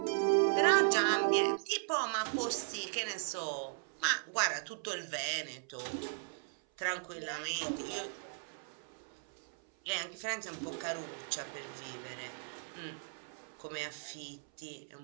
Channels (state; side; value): silent; left; 53 dB below the other